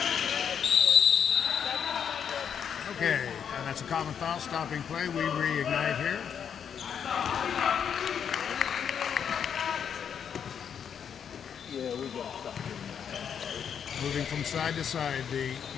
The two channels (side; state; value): right; quieter; 7.9 dB